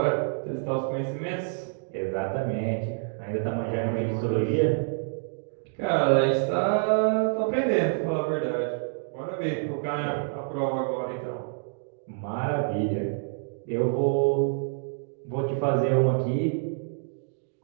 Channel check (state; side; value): silent; left; digital silence